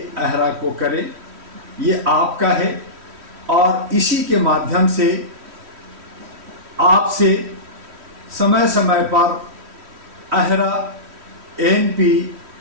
अहरा को करें, ये आपका है। और इसी के माध्यम से आपसे समय समय पर अहरा, ANP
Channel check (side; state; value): left; late; 3.1 ms